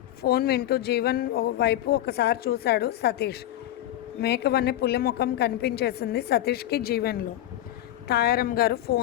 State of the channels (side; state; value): right; quieter; 13.4 dB